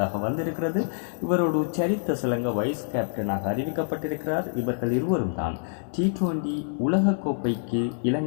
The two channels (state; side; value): silent; right; digital silence